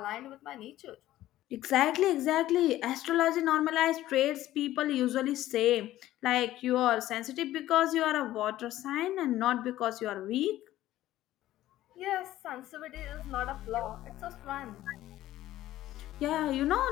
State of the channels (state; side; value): quieter; right; 14.5 dB